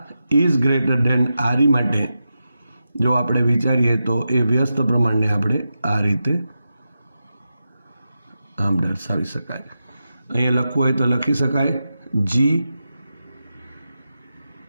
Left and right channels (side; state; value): both; inverted; correlation -0.90